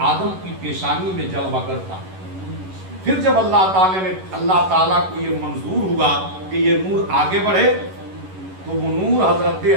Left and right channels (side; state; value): left; late; 11 ms